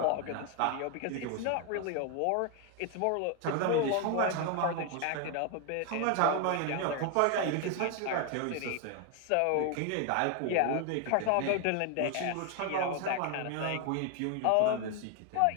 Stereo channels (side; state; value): both; different; correlation 0.01